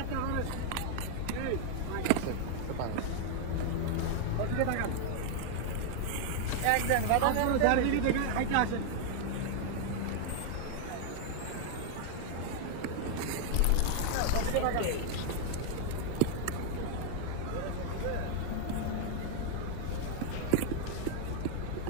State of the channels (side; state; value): both; different; correlation 0.00